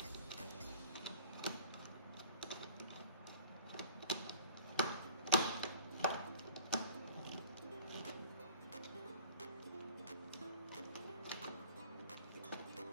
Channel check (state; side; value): inverted; both; correlation -0.47